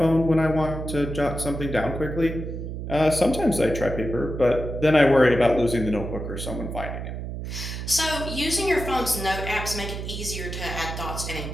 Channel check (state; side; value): noise; right; hum, 6 dB below the sound